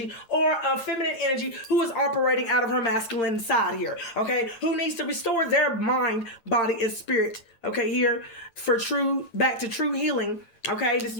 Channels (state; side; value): late; right; 8.8 ms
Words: or a feminine energy who is operating out of her masculine side here, okay, who needs to restore their mind, body, and spirit, okay, here for back to true healing, okay. This